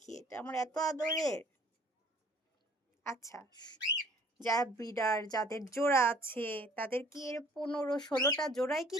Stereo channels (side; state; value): both; normal; correlation 0.54